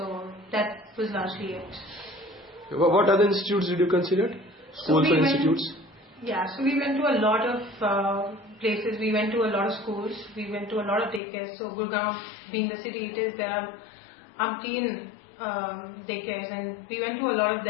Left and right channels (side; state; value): right; drops out; at 11.2 s